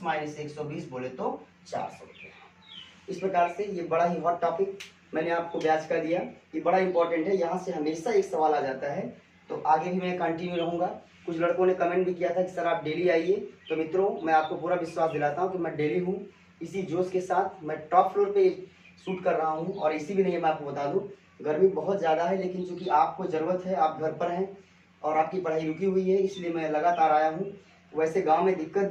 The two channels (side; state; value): both; identical; correlation 1.00